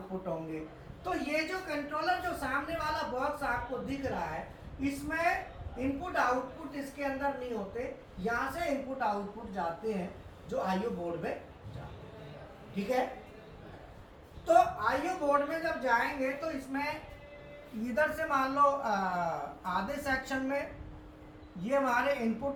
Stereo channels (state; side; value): identical; both; correlation 1.00